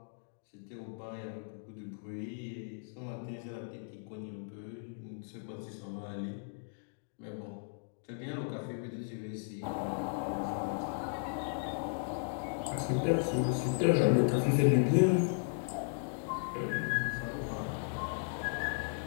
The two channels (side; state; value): right; silent; digital silence